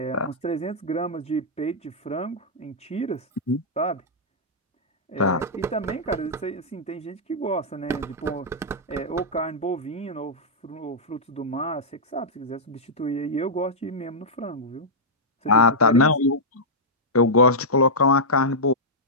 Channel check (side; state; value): both; normal; correlation -0.10